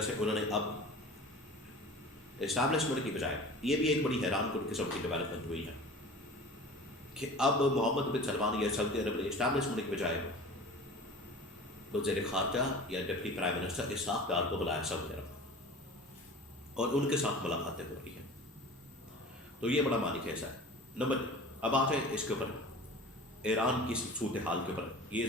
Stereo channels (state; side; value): normal; both; correlation 0.39